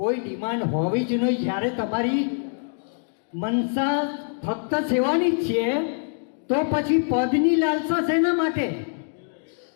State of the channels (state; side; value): silent; right; 58 dB below the other